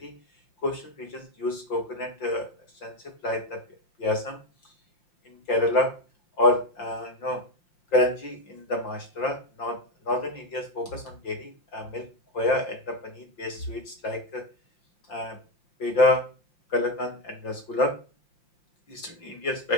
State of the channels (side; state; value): right; late; 5.8 ms